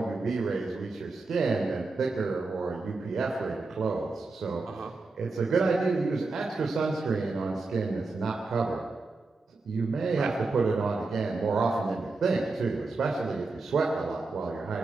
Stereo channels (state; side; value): quieter; left; 3.6 dB